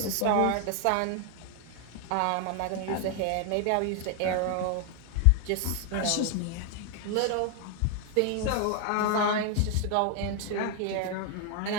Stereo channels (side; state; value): both; different; correlation 0.00